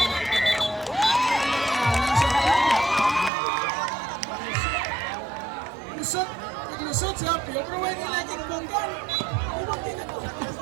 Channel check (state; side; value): drops out; left; at 3.3 s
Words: Lusot si Apio, pero wala nila yung bonggan.